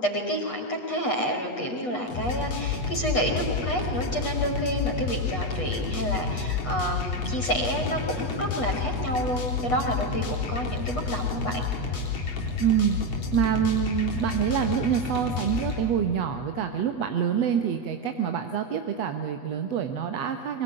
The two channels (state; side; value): late; right; 8.2 ms